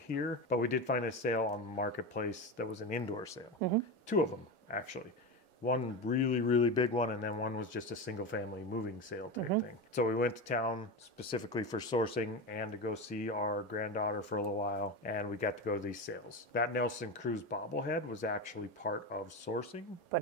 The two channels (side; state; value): both; normal; correlation 0.20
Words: but we did find a sale on Marketplace that was an indoor sale. 2 of them, actually. One really, really big one, and then one was just a single family moving sale type thing. So we went to town specifically for sourcing and to go see our granddaughter for a little while, and we got to go to these sales. That Nelson Cruz bobblehead was actually part of sourcing.